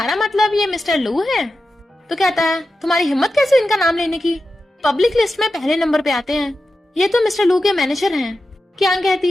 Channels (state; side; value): normal; both; correlation 0.91